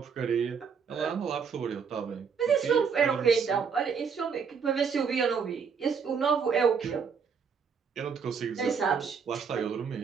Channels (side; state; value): left; quieter; 6.2 dB